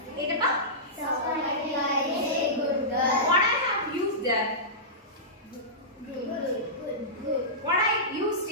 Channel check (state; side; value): normal; both; correlation -0.17